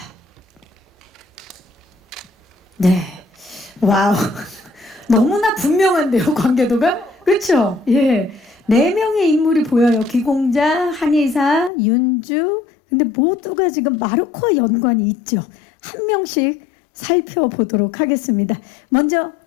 네, 와우, 너무나 분명한데요, 관계도가? 그렇죠? 예, 4명의 인물이 보여요. 귀공자, 한의사, 윤주. 근데 모두가 지금 마르코와 연관이 있죠. 한 명씩 살펴보도록 하겠습니다. 먼저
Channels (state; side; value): drops out; right; at 11.7 s